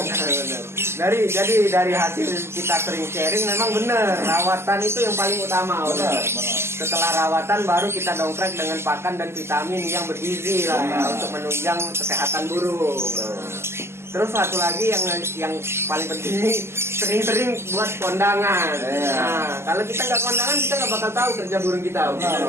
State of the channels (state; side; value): late; left; 0.12 ms